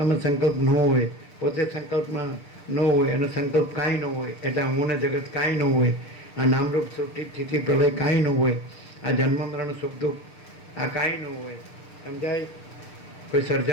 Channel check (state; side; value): late; right; 6.7 ms